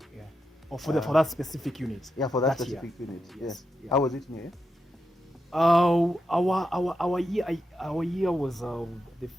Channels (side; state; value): both; normal; correlation 0.86